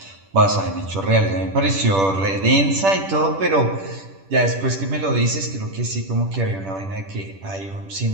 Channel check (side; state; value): left; late; 10 ms